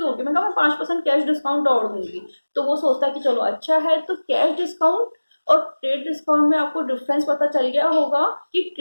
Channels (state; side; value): inverted; both; correlation -1.00